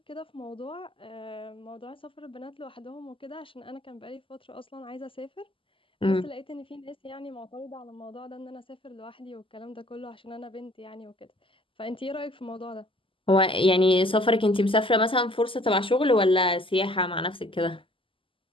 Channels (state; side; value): late; right; 0.25 ms